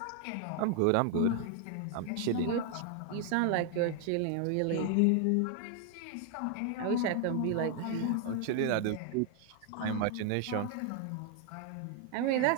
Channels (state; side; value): different; both; correlation 0.00